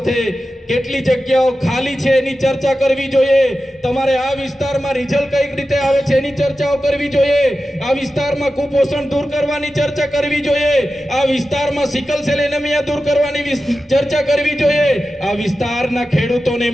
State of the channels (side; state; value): both; normal; correlation 0.93